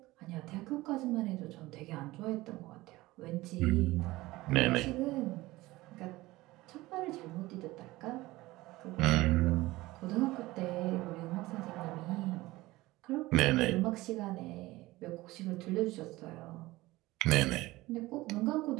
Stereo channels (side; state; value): left; quieter; 19.1 dB